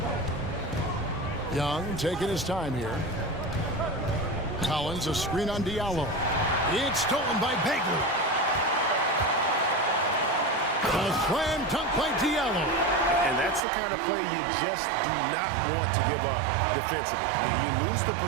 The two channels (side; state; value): left; drops out; at 13.6 s